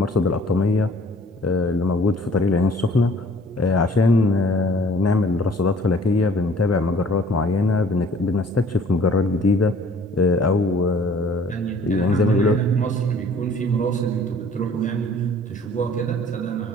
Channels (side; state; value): both; normal; correlation 0.54